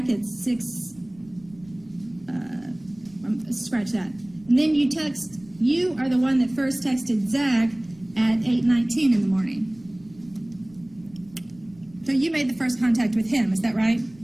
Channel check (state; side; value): noise; right; rumble, 26 dB below the sound